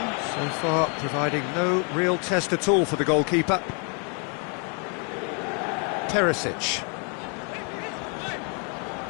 so far providing no real test at all for the goalkeeper. Perisic.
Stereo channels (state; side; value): quieter; right; 37.4 dB